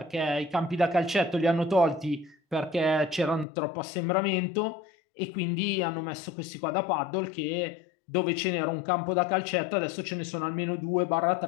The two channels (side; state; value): right; drops out; at 3.5 s